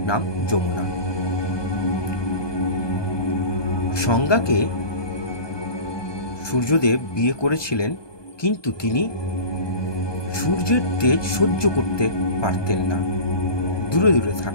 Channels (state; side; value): late; right; 1.2 ms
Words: নাম যমুনা। সংজ্ঞাকে সূর্যদেব বিয়ে করেছিলেন, কিন্তু তিনি সূর্যের তেজ সহ্য করতে পারতেন না, দূরে দূরে